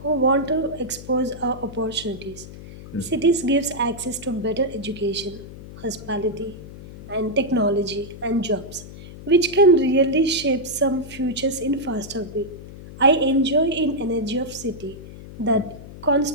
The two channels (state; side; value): noise; left; hum, 15 dB below the sound